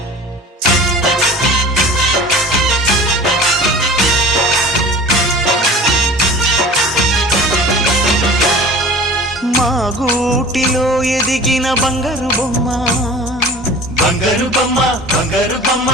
మా గూటిలో ఎదిగిన బంగారు బొమ్మ, బంగారు బొమ్మ, బంగారు బొమ్మ.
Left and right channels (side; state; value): both; normal; correlation 0.41